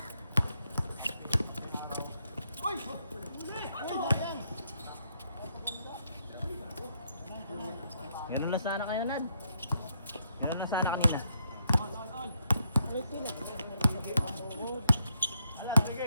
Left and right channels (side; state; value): both; inverted; correlation -0.77